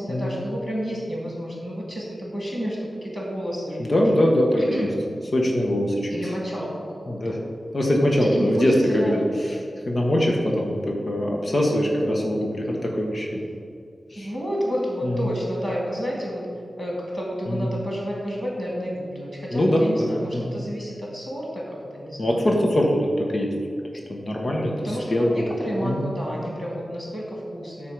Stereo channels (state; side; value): normal; both; correlation 0.94